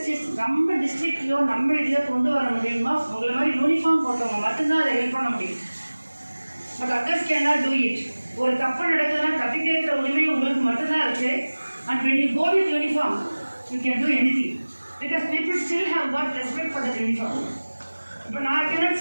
is நம்ம டிஸ்ட்ரிக்ட்லையோ நம்ம இதிலோ கொண்டு வர முடியுமா உங்களை மாதிரி யூனிஃபார்ம் போட்டவங்க மட்டும்தான் அதை ஹெல்ப் பண்ண முடியும். But others can not do it. ஒரு தப்பு நடக்குதுன்னா தப்பி கேட்குற உரிமை உங்களுக்கு மட்டும்தான் இருக்குது. And when you go with uniform, you can do anything. Because people still have got respect for the uniform. இப்போ நான் cannot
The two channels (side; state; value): both; inverted; correlation -1.00